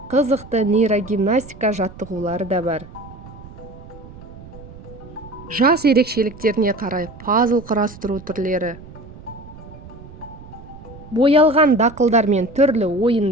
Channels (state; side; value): noise; right; rumble, 17 dB below the sound